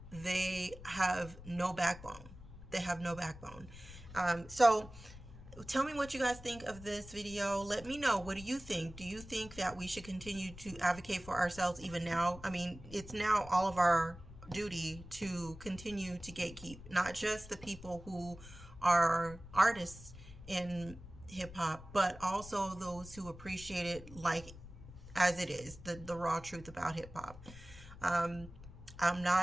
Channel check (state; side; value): noise; left; rumble, 16 dB below the sound